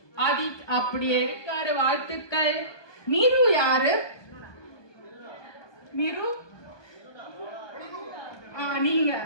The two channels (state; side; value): late; right; 1.2 ms